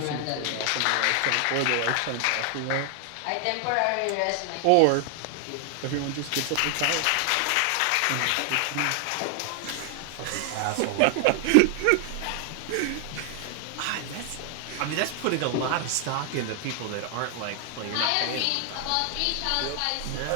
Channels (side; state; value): both; different; correlation 0.00